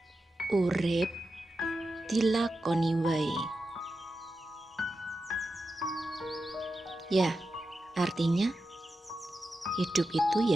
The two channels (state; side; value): normal; both; correlation 0.90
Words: urip dilakoni wae. Ya, artinya hidup itu